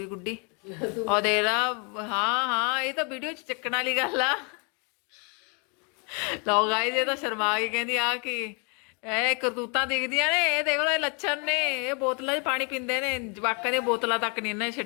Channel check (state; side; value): quieter; right; 35.1 dB